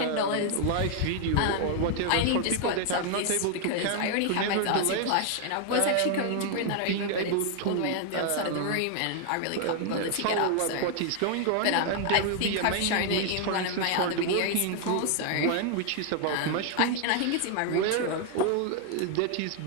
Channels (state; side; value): different; both; correlation 0.00